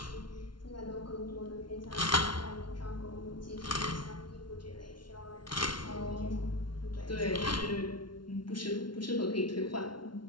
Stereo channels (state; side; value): late; right; 0.72 ms